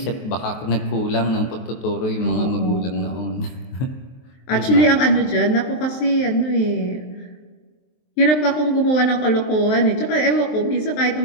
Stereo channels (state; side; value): late; right; 23 ms